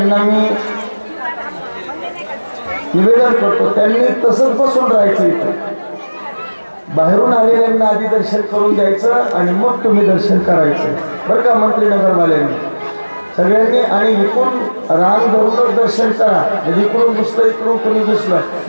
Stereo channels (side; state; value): both; inverted; correlation -1.00